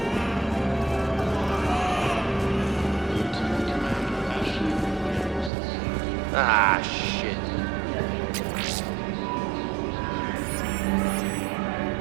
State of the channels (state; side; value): drops out; left; at 5.5 s